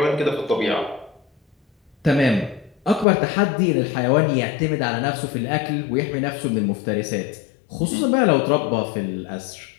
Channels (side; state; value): right; drops out; at 3.1 s